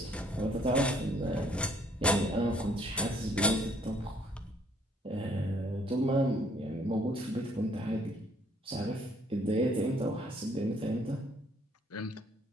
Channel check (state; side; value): normal; both; correlation 0.63